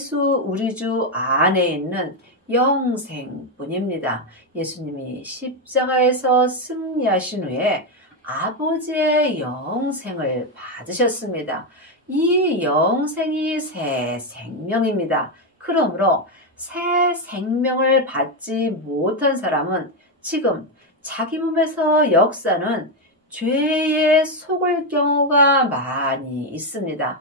우리 주 안에 있는 영생뿐입니다. 예수님이 십자가에서 승리하신 후에 아버지의 영생을 받으셨습니다. 이 영생이 새 생명입니다. 그러므로 새 생명을 받지 못한 사람은 지금 자기 몸에서 역사는 죄에 속을 경우가 많이 있습니다.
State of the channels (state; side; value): normal; both; correlation 0.06